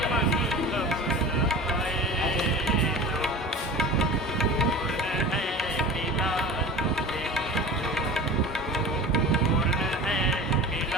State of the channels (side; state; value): both; normal; correlation 0.35